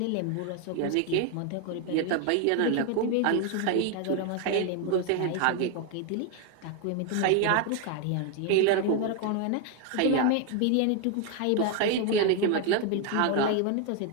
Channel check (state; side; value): different; both; correlation 0.01